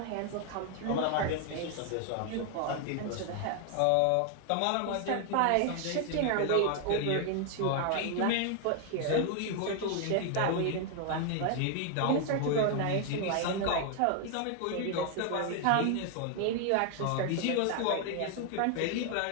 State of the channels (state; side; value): different; both; correlation 0.00